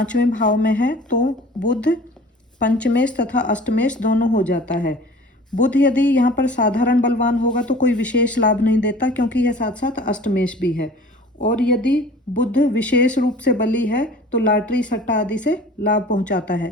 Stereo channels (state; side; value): normal; both; correlation 0.45